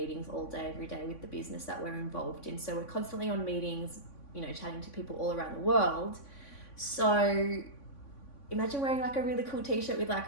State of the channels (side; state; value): right; late; 3.5 ms